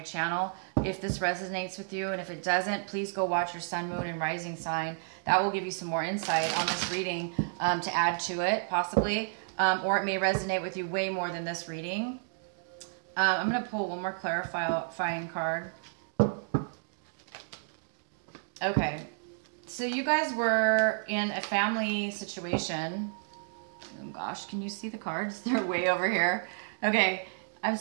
channel if this resonates with you. And if it doesn't, please go watch your sun, moon, and rising sign. That will give you some more insight on this reading to add to it, possibly. Or it may resonate with you way more than this reading. I'm going to pull one more clarifying card. Okay. So you guys were in a family situation. Oh gosh, can you see the cards? They're way over here. Okay, I'm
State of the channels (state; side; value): silent; left; digital silence